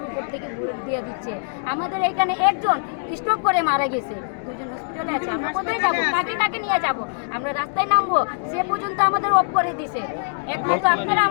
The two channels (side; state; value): right; silent; digital silence